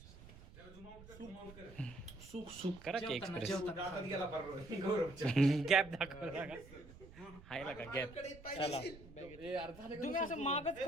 सुख सुख करा की एक्सप्रेस. गॅप दाखवला का? हायला का गॅप. चला तुम्ही असं मागच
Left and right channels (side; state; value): right; noise; rumble, 18 dB below the sound